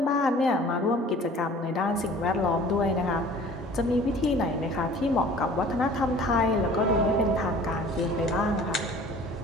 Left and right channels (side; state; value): both; normal; correlation 0.48